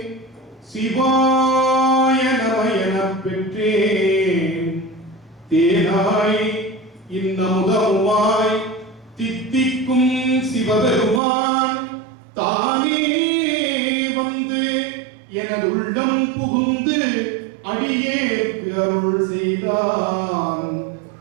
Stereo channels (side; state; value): left; drops out; at 11.2 s